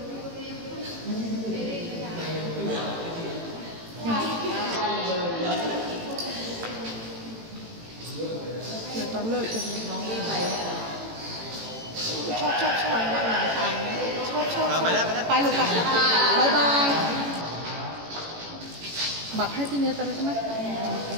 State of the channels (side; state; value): left; late; 18 ms